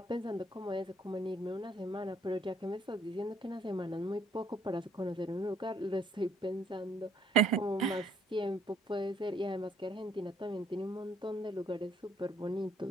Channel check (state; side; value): normal; both; correlation 0.65